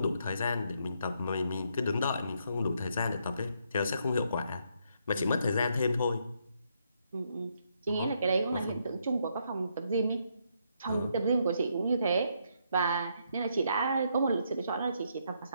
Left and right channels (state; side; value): inverted; both; correlation -0.75